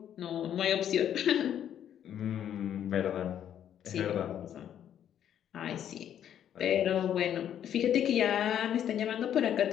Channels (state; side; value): quieter; right; 10.0 dB